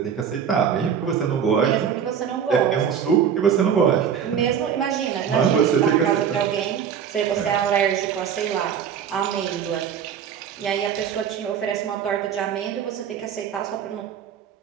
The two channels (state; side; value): quieter; left; 8.0 dB